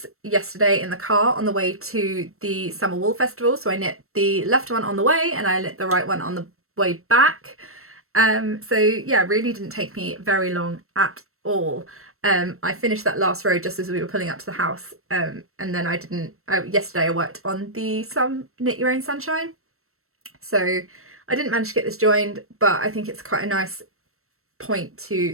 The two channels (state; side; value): late; left; 0.63 ms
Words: yesterday in the car on the way to the Summer Wool Festival. So I knit the left one on the way and I knit the right one on the way back. So yeah, really didn't take me very long at all. I finished that last row just as we were pulling up to the house, and then yesterday I worked on the Knit Your Own Sunshine, so I didn't manage to get this joined, but I think it's quite a nice point to